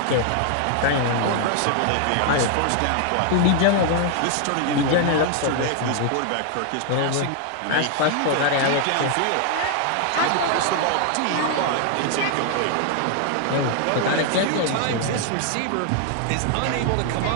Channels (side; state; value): both; different; correlation 0.00